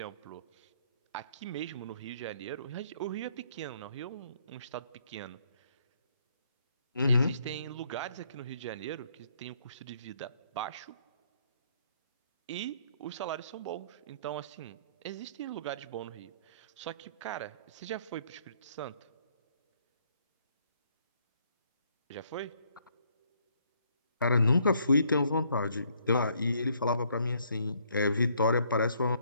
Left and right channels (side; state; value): both; inverted; correlation -0.68